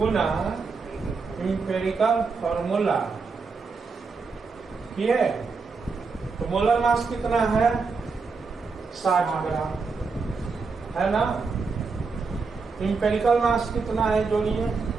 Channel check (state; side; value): quieter; left; 4.6 dB